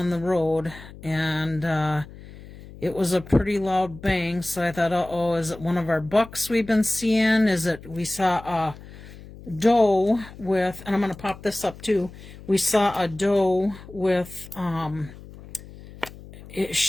the road, and it was a pretty loud bang. So I thought, uh-oh, is it one of our bucks we've been seeing? Is it, we saw a doe with, and I'm going to pop this up too. We saw a doe with,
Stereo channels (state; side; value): noise; left; hum, 17 dB below the sound